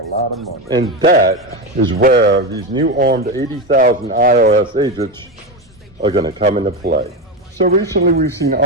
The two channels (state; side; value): normal; both; correlation 0.15